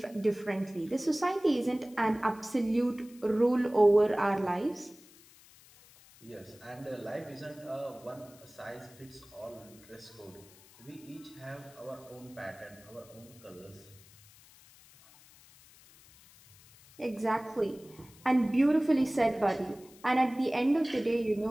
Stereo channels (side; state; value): left; noise; hiss, 24 dB below the sound